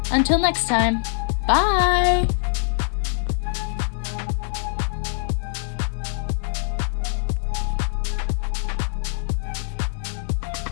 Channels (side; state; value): right; silent; digital silence